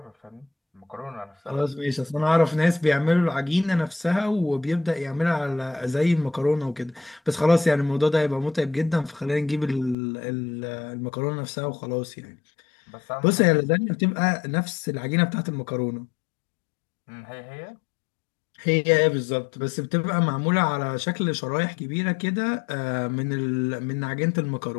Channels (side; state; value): right; drops out; at 10.0 s